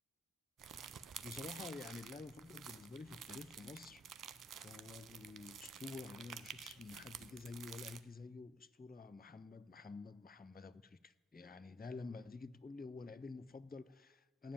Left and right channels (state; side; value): normal; both; correlation 0.71